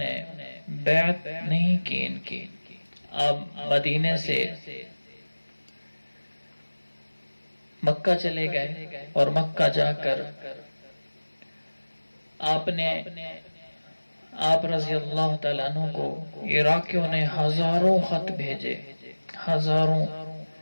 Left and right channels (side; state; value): both; inverted; correlation -1.00